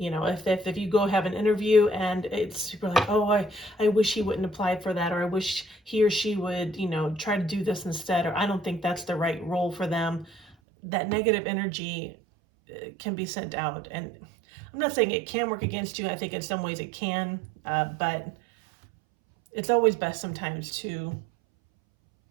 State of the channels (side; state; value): left; drops out; at 10.6 s